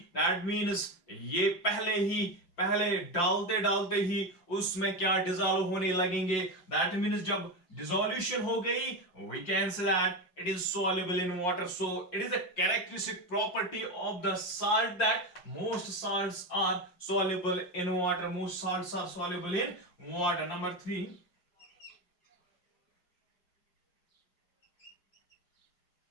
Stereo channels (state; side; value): late; right; 5.7 ms